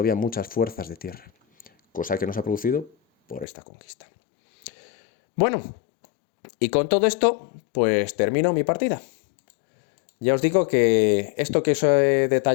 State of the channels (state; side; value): drops out; right; at 3.5 s